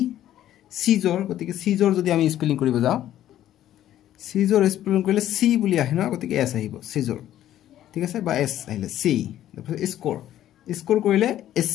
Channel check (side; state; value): right; quieter; 12.3 dB